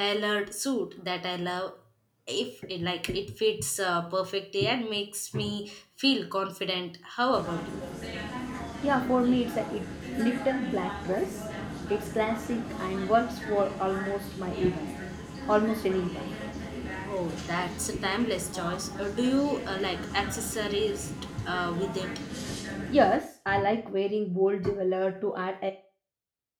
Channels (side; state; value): both; identical; correlation 1.00